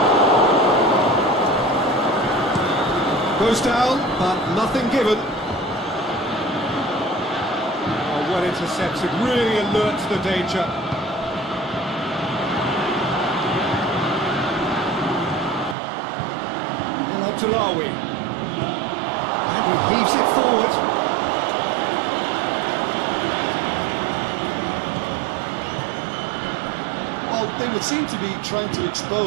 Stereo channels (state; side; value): drops out; left; at 15.8 s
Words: Goes down, but nothing given. Oh, well intercepted, really alert to the danger. El Abdullawi. And he heaves it forward. They would seem to be trying to